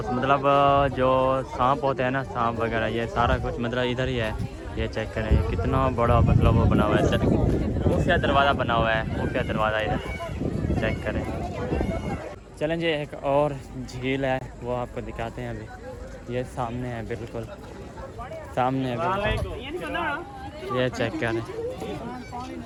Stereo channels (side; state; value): both; identical; correlation 1.00